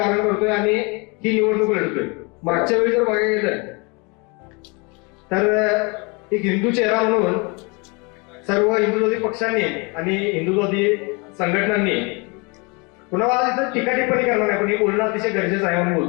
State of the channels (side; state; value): right; quieter; 29.9 dB